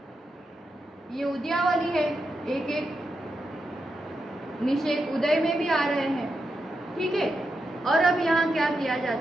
ये उद्यावली है, एक एक निषेक उदय में भी आ रहे हैं, ठीक है। और अब यहाँ क्या किया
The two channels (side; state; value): both; normal; correlation 0.86